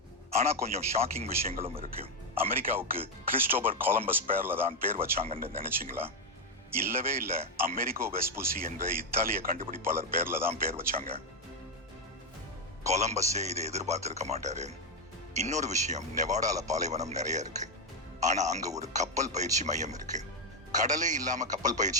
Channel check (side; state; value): both; normal; correlation 0.04